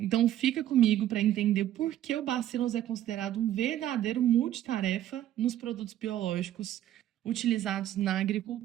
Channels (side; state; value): left; quieter; 12.3 dB